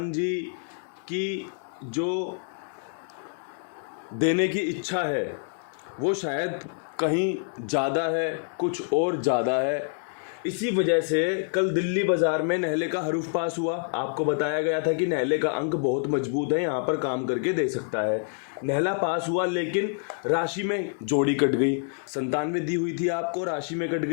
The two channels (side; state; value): right; silent; digital silence